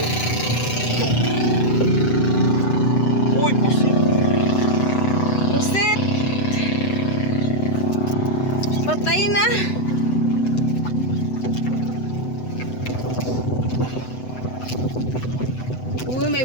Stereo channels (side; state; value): right; late; 7.9 ms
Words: Uy, pusit! Pusit. Patay na. Uy, may